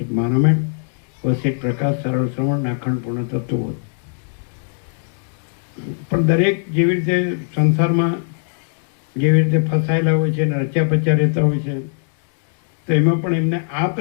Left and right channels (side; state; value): right; silent; digital silence